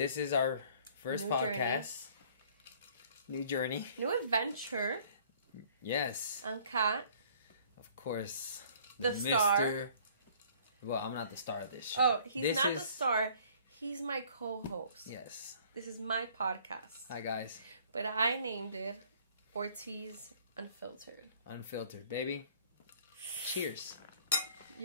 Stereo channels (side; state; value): both; inverted; correlation -0.55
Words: is our first New podcast. New journey. New adventure. Yes. I'm Kat. Of course. The star. Well, I'm not the star of this show. Oh, he's not the star. He's my co-host. Yes. This is my podcast. Hi, guys. But I named it Ortiz Unfiltered. Unfiltered, baby. Cheers.